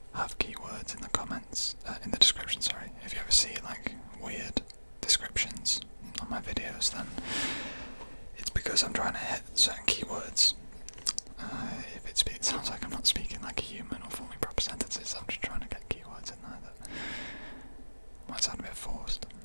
have keywords in the comments, in the description, sorry. If you ever see like weird descriptions on my videos, then it's because I'm trying to hit certain keywords. If it sounds like I'm not speaking like a human or forming proper sentences, I'm just trying to get keywords in there that might sound a bit forced.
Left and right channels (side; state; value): both; inverted; correlation -1.00